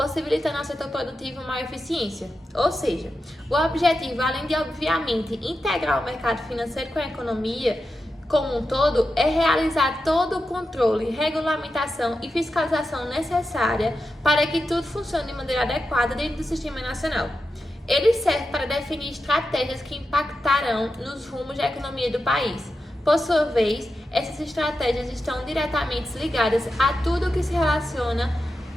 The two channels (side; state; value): both; normal; correlation 0.90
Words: ao setor produtivo maior eficiência. Ou seja, o objetivo, além de obviamente integrar o mercado financeiro com a economia como um todo, é realizar todo o controle, regulamentação e fiscalização necessária para que tudo funcione de maneira adequada dentro do Sistema Nacional. Ele serve para definir estratégias que impactarão nos rumos da economia do país. Por sua vez, essas estratégias estão diretamente ligadas a tudo que se relaciona